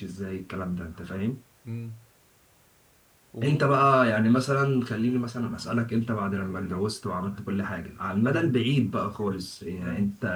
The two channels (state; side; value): identical; both; correlation 1.00